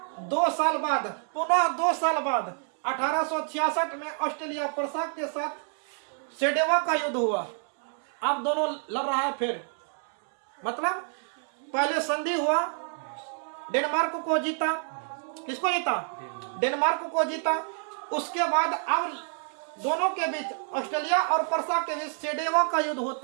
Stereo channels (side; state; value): left; silent; 59 dB below the other